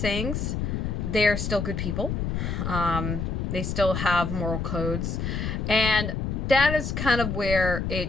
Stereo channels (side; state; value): left; noise; rumble, 2 dB below the sound